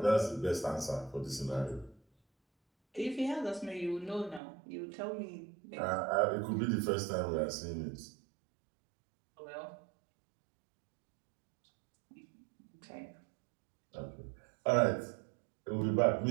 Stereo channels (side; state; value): left; drops out; at 4.4 s